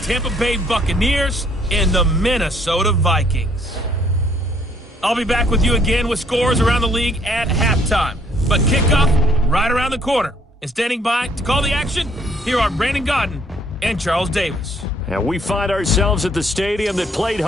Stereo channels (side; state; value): both; normal; correlation 0.64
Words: Tampa Bay Buccaneers and the Minnesota Vikings. I'll be back with you again with scores around the league at halftime, but kickoff right around the corner. And standing by to call the action, here are Brandon Godden and Charles Davis. And we find ourselves at the stadium that played